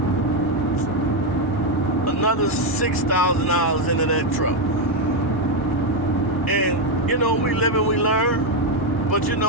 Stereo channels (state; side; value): normal; both; correlation 0.05